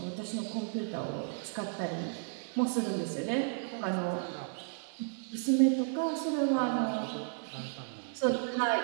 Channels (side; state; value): left; silent; 55 dB below the other